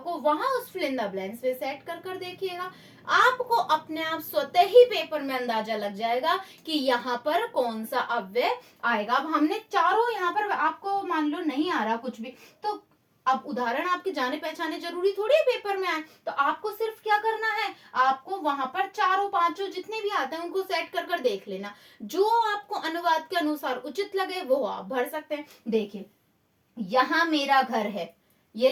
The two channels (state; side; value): identical; both; correlation 1.00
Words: वहां उस फिल इन द ब्लैंक्स पे सेट कर कर देखिएगा। आपको अपने आप स्वतः ही पेपर में अंदाजा लग जाएगा कि यहाँ पर कौन सा अव्यय आएगा। अब हमने चारों, यहाँ पर आपको मान लो नहीं आ रहा कुछ भी, तो अब उदाहरण आपके जाने पहचाने जरूरी थोड़ी है पेपर में आए, तो आपको सिर्फ क्या करना है, आपको वहां पर चारों पांचों जितने भी आते हैं उनको सेट कर कर देख लेना, जो आपको अनुवाद के अनुसार उचित लगे वो आप भर सकते हैं। देखिए यहाँ मेरा घर है, ये